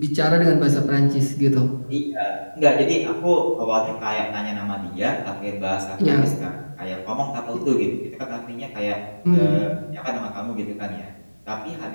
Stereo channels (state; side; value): inverted; both; correlation -1.00